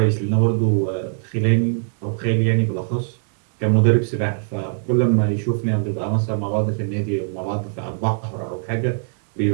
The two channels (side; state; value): left; silent; digital silence